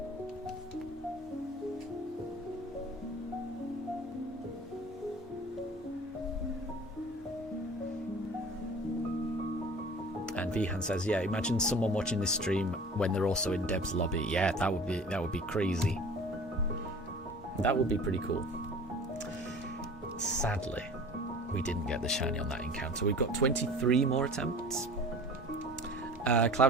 And Vihan says, yeah, imagine someone watching this stream when they're also in Deb's lobby. Yeah, that would be crazy. That would be pretty cool. Sadly, we didn't get the shiny on that encounter. We've got 23 more attempts.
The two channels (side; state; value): both; normal; correlation 0.42